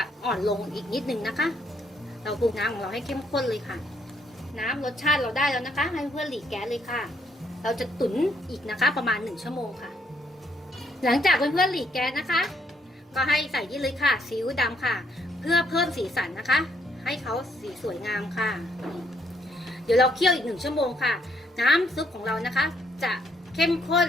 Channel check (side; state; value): both; normal; correlation 0.71